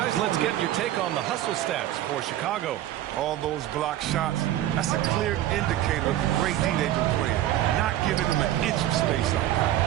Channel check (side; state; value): left; quieter; 13.2 dB